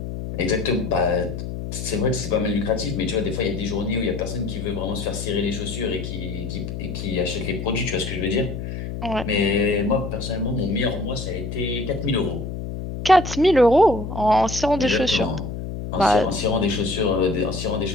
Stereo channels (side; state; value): left; noise; hum, 6 dB below the sound